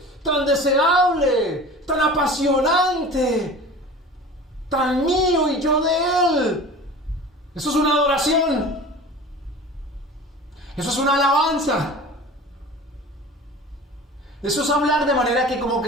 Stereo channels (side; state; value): both; normal; correlation 0.38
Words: tan deseable, tan apasionante, tan mío y yo de él. Eso es una adoración. Eso es una alabanza. Eso es hablar de manera que como